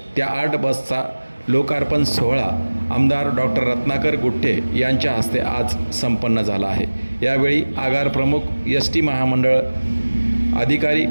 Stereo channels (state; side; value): inverted; both; correlation -1.00